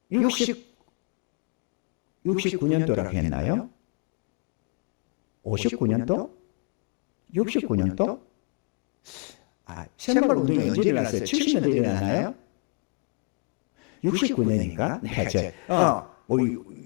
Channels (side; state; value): right; quieter; 36.8 dB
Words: 69년도라고 했나요? 59년도? 69년도? 새마을 운동이 언제 일어났어요? 70년대 일어났나요? 69년인가? 내가